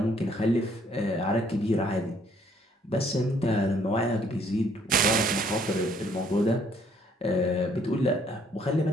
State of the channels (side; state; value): both; normal; correlation 0.64